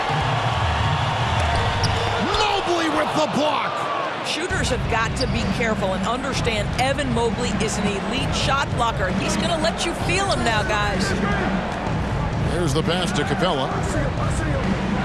Mobley with the block. Shooters have got to be careful and understand Evan Mobley is an elite shot blocker. He's going to let you feel him now, guys. There's the pass to Capella.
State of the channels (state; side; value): identical; both; correlation 1.00